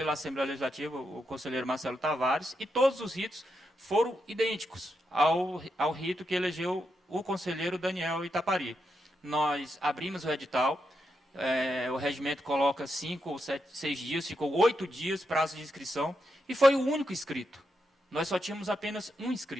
Assembleia Legislativa, o conselheiro Marcelo Tavares, e todos os ritos foram idênticos ao rito que elegeu o conselheiro Daniel Itapari. Nós abrimos o edital, o regimento coloca 5 ou 6 dias, ficou 8 dias prazo de inscrição, e foi o único inscrito. Nós só tínhamos apenas um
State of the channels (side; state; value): both; normal; correlation 0.84